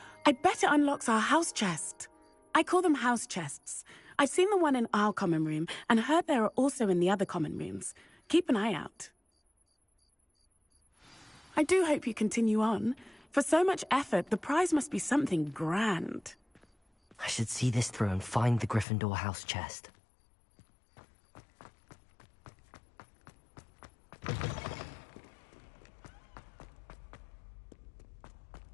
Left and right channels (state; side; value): drops out; right; at 18.9 s